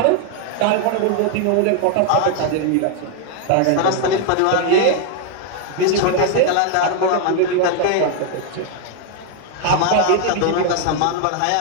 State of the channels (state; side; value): different; both; correlation 0.00